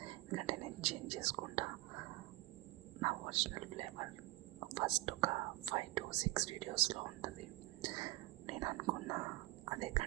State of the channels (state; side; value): quieter; left; 19.0 dB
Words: ఎందుకంటే నేను చేంజ్ చేసుకుంటా నా ఒరిజినల్ ఫ్లేవర్. ఫస్ట్ ఒక 5 to 6 వీడియోస్లో ఉంటుంది. నేను అనుకున్నా అదే